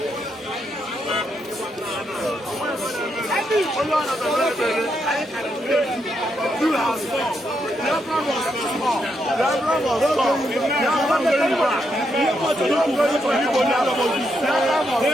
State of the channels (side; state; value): both; normal; correlation 0.80